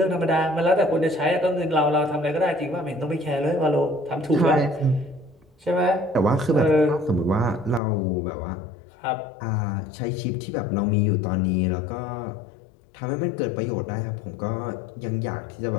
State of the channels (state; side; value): drops out; right; at 7.8 s